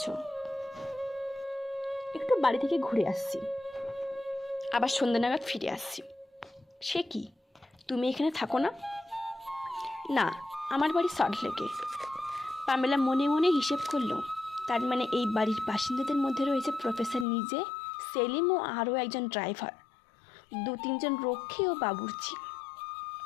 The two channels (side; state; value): right; drops out; at 17.2 s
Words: একটু বাড়ি থেকে ঘুরে আসছি, আবার সন্ধ্যা নাগাদ ফিরে আসছি। সে কি, তুমি এখানে থাকো না? না, আমার বাড়ি সল্টলেকে। পামেলা মনে মনে হিসেব করলো, তার মানে এই বাড়ির বাসিন্দাদের মধ্যে রয়েছে প্রফেসর নিজে, সেলিম ও আরও একজন ড্রাইভার, 2-3 জন রক্ষী ও বাবুর্চি।